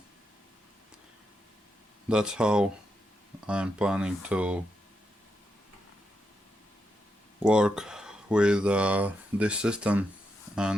that's how I'm planning to work with this system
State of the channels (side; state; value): both; normal; correlation 0.84